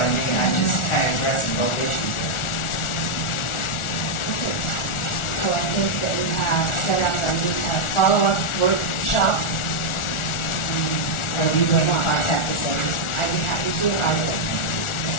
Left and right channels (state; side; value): late; right; 1.4 ms